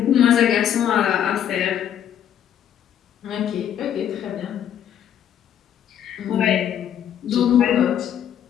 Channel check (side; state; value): right; quieter; 9.8 dB